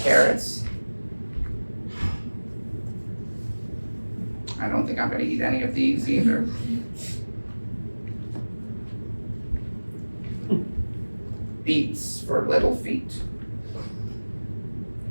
I don't think I'm going to eat any of these either. Beets for little feet.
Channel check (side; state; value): both; inverted; correlation -1.00